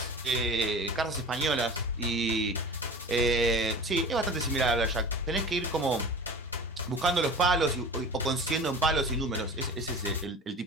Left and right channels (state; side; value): normal; both; correlation 0.37